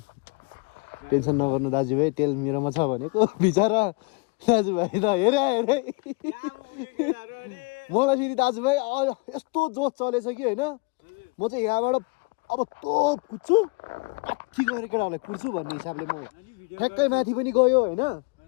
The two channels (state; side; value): quieter; right; 29.6 dB